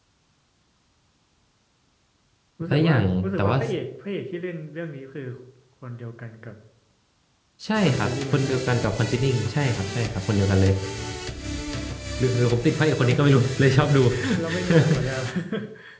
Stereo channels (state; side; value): identical; both; correlation 1.00